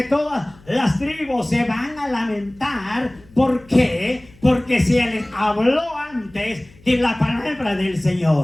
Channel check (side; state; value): left; noise; hum, 26 dB below the sound